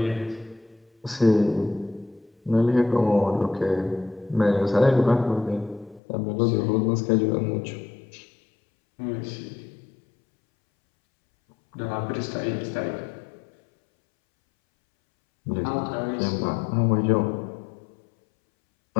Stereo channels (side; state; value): right; drops out; at 6.0 s